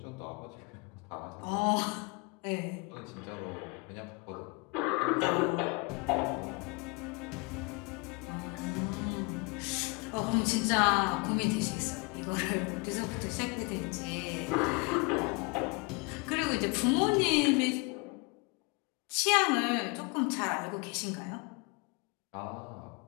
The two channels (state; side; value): quieter; right; 29.6 dB